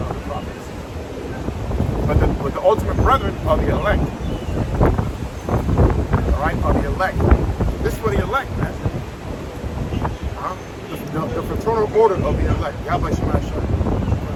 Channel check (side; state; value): both; identical; correlation 1.00